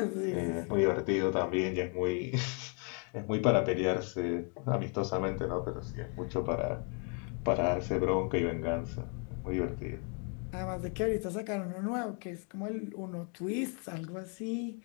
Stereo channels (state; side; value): quieter; right; 39.5 dB